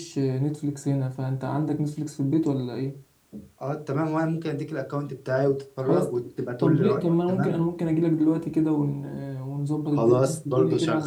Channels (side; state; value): both; identical; correlation 1.00